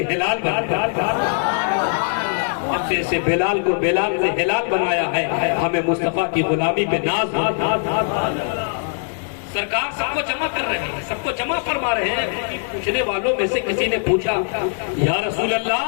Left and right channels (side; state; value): right; silent; digital silence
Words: ہلال بن گئے۔ سے بلال کو بلال سے ہلال بنایا ہے، ہمیں مصطفیٰ کی غلامی پہ ناز ہے۔ سرکار سب کو جمع کر رہے ہیں، سب کو جمع فرما رہے ہیں۔ پوچھنے والوں میں سے کسی نے پوچھا یا رسول